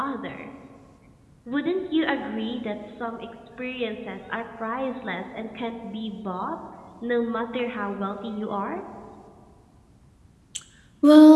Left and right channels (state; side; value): identical; both; correlation 1.00